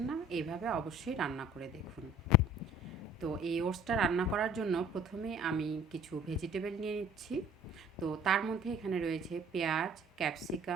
না, এইভাবে অবশ্যই রান্না করে দেখুন। তো এই ওটসটা রান্না করার জন্য প্রথমে আমি কিছু ভেজিটেবল নিয়ে নিচ্ছি। তো তার মধ্যে এখানে রয়েছে পেঁয়াজ,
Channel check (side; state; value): both; normal; correlation 0.51